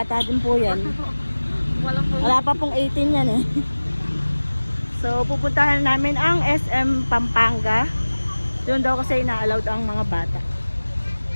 din po yan. Wala pa pong 18 yan eh. So pupuntahan namin ang SM Pampanga. Doon daw kasi ina-allowed ang mga bata.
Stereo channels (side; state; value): both; inverted; correlation -1.00